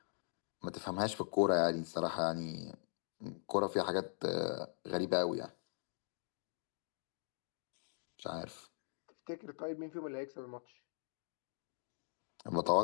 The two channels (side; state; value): right; silent; digital silence